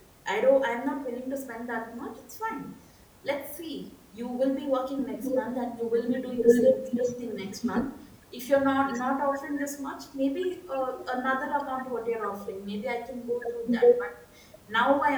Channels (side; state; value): both; identical; correlation 1.00